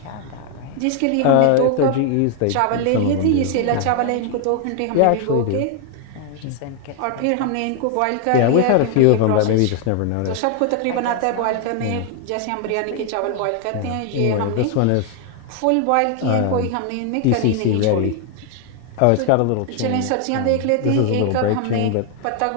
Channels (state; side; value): different; both; correlation 0.00